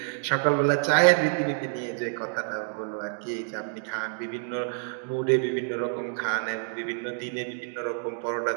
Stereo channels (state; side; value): silent; left; digital silence